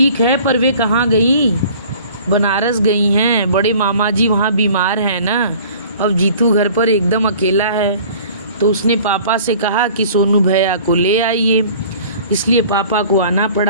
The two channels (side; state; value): both; inverted; correlation -0.48